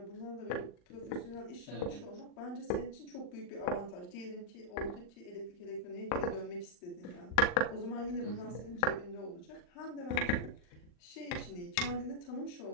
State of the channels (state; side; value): late; right; 39 ms